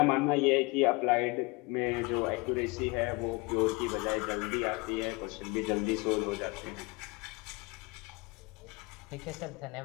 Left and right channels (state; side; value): quieter; right; 26.0 dB